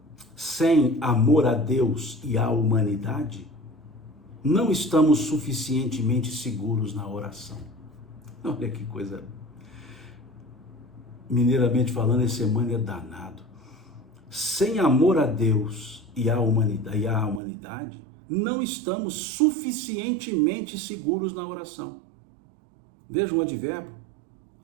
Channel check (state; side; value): drops out; left; at 17.4 s